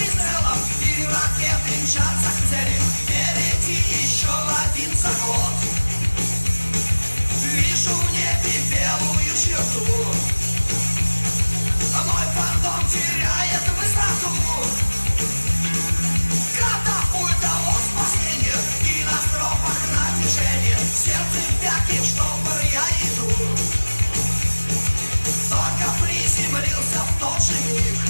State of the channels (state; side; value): inverted; both; correlation -1.00